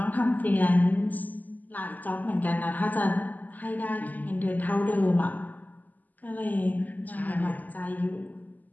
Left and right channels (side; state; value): right; late; 0.082 ms